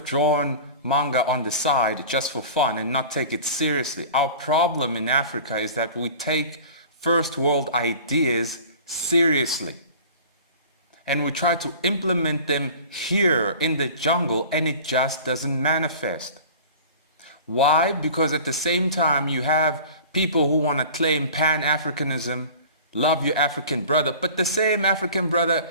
drawn manga on the side just for fun and not take it seriously. Our problem in Africa is that we take first world ideas seriously. And we try to implement them here in the jungle, and it just doesn't manifest. Why? Because at the same time you have people who want to claim Pan-Africanism, love your African brother, but the same African brother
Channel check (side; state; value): both; inverted; correlation -0.41